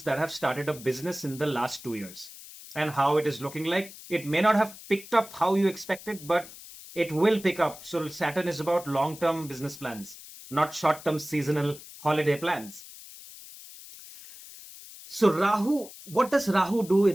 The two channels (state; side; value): noise; left; hiss, 16 dB below the sound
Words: that have started a business in the last 2 years and how it is looking like. It may not have picked up how you expected, but it will pick up. So Saturn is about long-term business plans, not short-term seasonal holiday plans. So Rahu, what does Rahu do